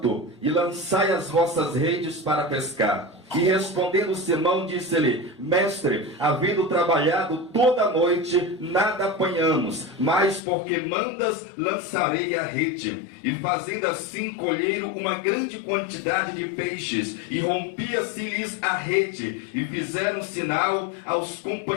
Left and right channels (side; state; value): right; drops out; at 10.4 s